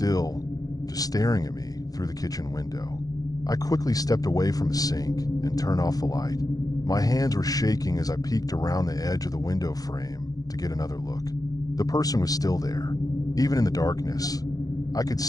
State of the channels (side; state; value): right; late; 0.18 ms